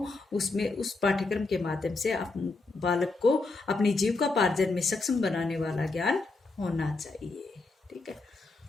उसमें उस पाठ्यक्रम के माध्यम से बालक को अपनी जीविकोपार्जन में सक्षम बनाने वाला ज्ञान होना चाहिए। ठीक है,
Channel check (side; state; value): right; quieter; 3.5 dB